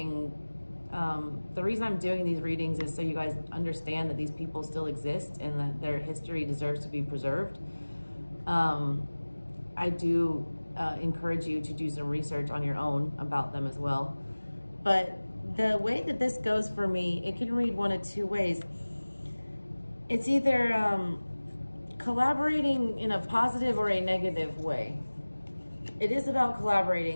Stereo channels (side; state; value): both; inverted; correlation -1.00